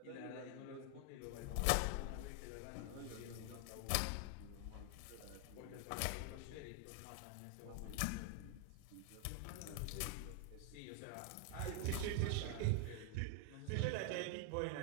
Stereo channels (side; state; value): both; different; correlation 0.00